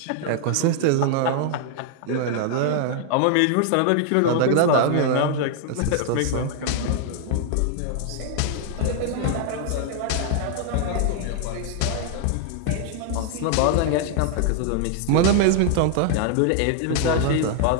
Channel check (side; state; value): both; different; correlation 0.00